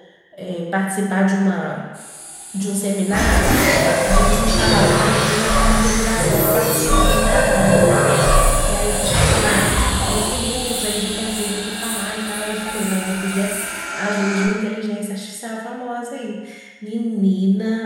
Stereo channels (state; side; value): identical; both; correlation 1.00